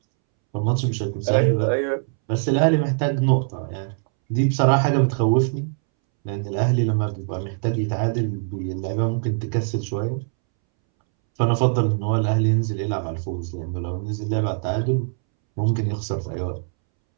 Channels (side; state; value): left; silent; 64 dB below the other